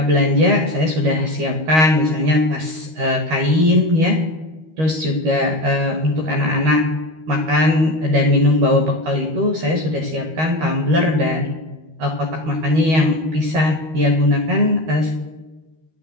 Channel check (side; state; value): left; late; 13 ms